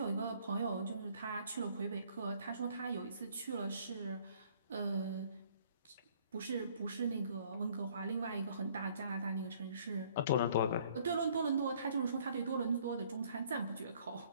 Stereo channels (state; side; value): inverted; both; correlation -0.59